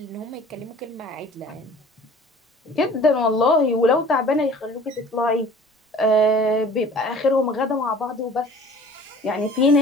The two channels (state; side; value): normal; both; correlation 0.47